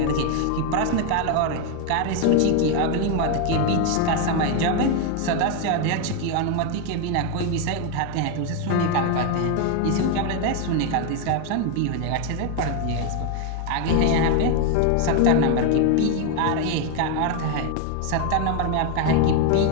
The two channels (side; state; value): both; different; correlation 0.01